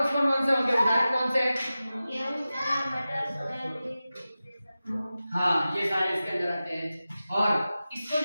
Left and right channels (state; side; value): inverted; both; correlation -0.95